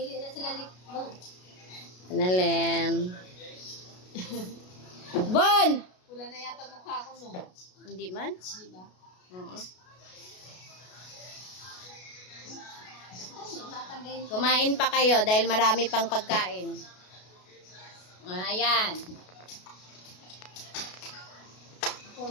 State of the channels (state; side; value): late; right; 33 ms